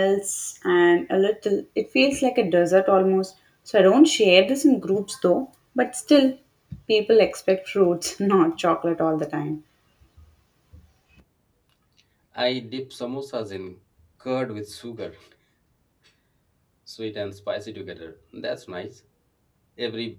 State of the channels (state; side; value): identical; both; correlation 1.00